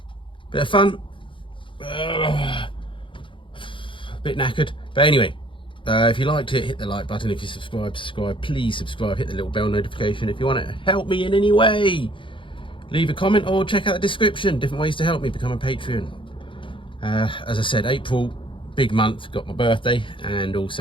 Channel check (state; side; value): late; right; 0.25 ms